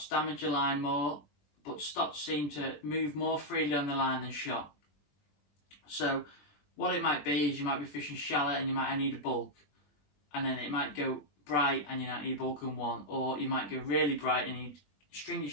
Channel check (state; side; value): late; right; 20 ms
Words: damage your line more, but stotz seem to move more freely on the line than shot. So what it might be is you might be fishing shallow and you might need a bulk, and then it might go bright and you might need a bulk in one, or you might go really bright and you string your